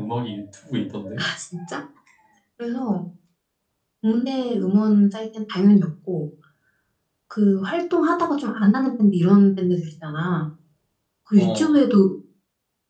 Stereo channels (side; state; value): both; identical; correlation 1.00